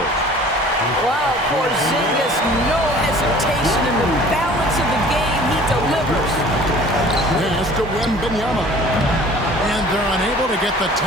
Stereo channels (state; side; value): normal; both; correlation 0.48